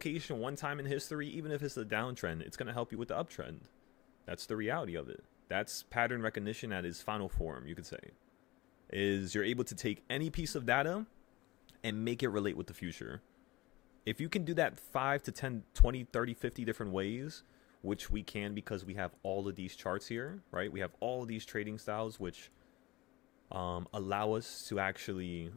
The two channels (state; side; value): quieter; right; 20.2 dB